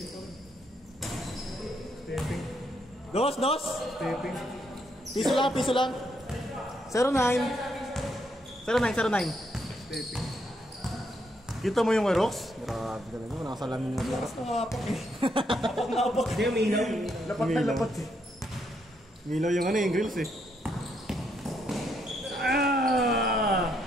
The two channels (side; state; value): both; normal; correlation 0.76